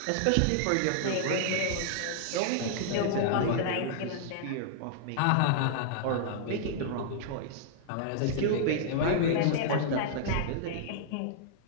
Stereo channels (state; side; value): different; both; correlation -0.01